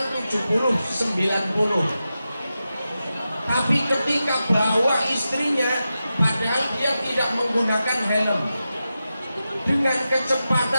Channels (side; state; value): both; inverted; correlation -0.91